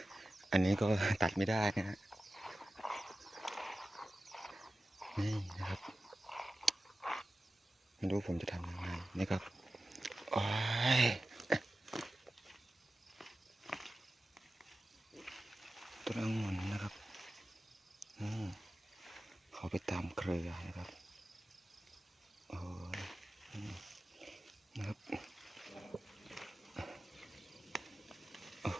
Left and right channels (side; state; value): both; normal; correlation 0.95